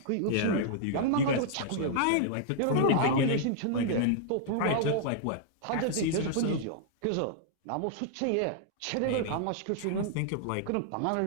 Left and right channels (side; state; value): both; different; correlation -0.01